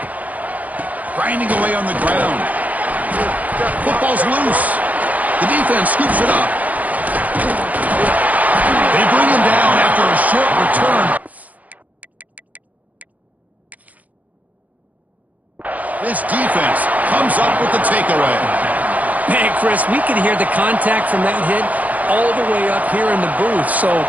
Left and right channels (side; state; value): left; late; 0.076 ms